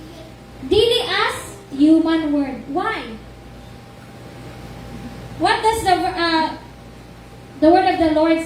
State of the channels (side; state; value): both; identical; correlation 1.00